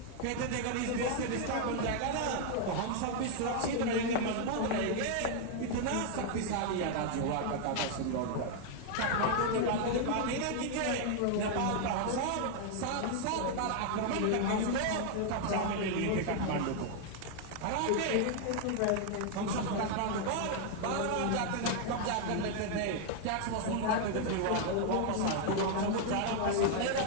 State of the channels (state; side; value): different; both; correlation 0.00